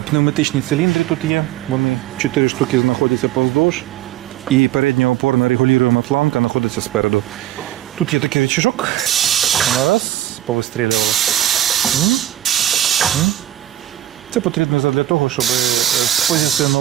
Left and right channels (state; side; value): quieter; left; 13.2 dB